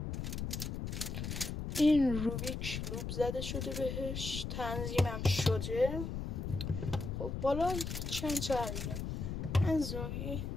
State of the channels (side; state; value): left; noise; rumble, 4 dB below the sound